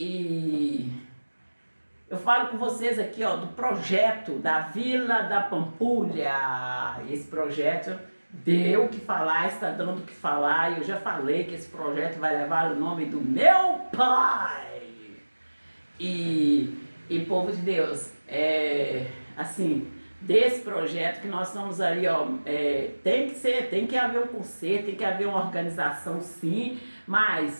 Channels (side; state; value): both; inverted; correlation -1.00